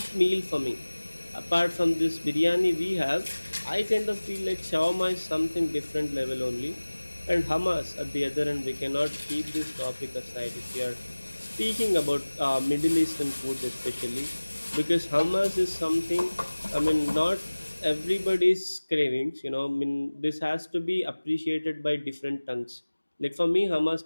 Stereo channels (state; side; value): inverted; both; correlation -1.00